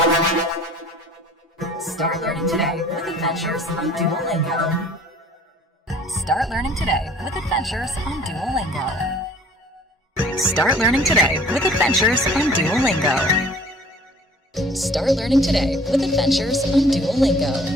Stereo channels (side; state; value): both; normal; correlation 0.52